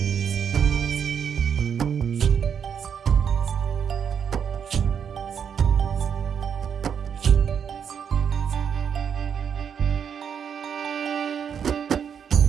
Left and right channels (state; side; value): quieter; left; 7.6 dB